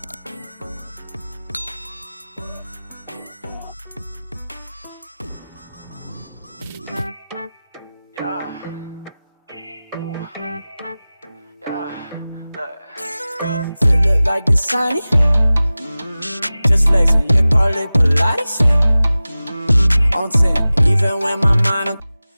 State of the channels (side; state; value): both; inverted; correlation -0.97